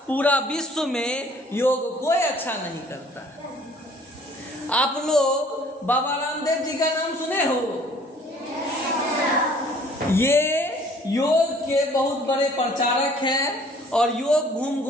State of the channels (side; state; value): both; normal; correlation 0.55